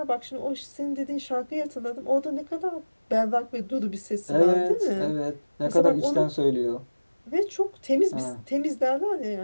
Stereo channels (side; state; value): both; inverted; correlation -1.00